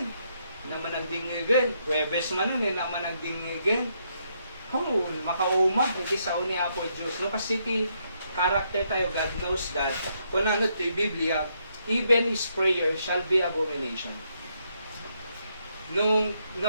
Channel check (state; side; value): inverted; both; correlation -0.76